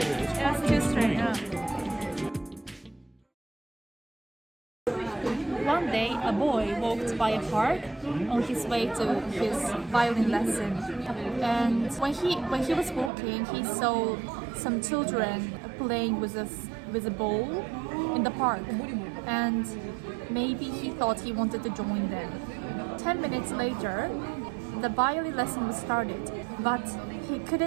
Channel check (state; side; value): drops out; left; at 13.1 s